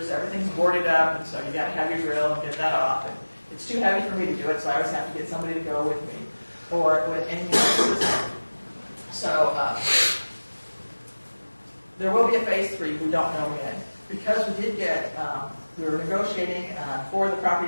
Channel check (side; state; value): both; inverted; correlation -1.00